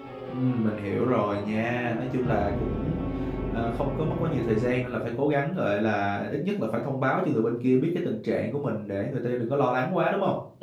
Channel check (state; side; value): identical; both; correlation 1.00